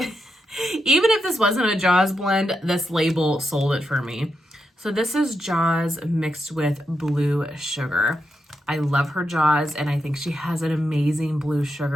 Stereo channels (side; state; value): both; normal; correlation 0.85